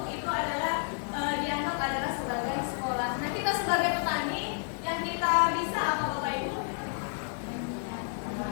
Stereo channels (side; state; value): right; silent; 57 dB below the other